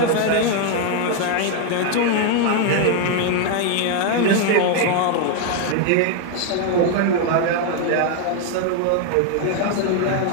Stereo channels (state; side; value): different; both; correlation 0.00